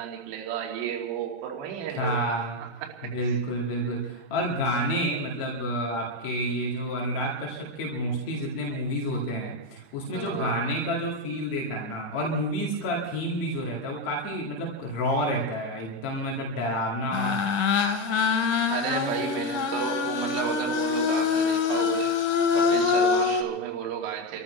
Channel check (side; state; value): right; late; 1.7 ms